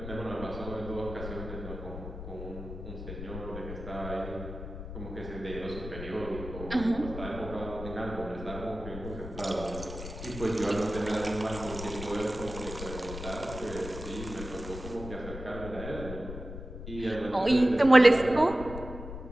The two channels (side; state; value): left; noise; rumble, 9 dB below the sound